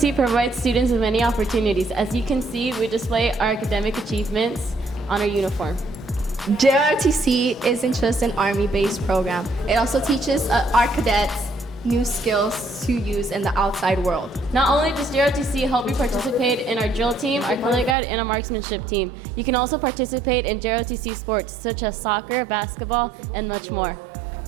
provides students with many opportunities. As you can see, we display our academic achievements on our uniform. JRTC isn't just an Army-based program. It also teaches our cadets new skills to use in the outside world. Not only does JROTC help you participate in our drill team, our color guide, and our marksmanship team, you can also participate in JROTC sports such as soccer, basketball, and much more.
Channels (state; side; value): drops out; left; at 17.9 s